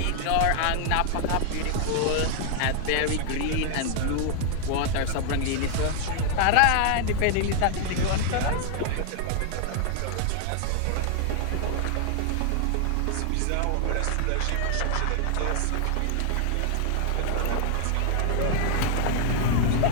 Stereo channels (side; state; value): both; different; correlation 0.00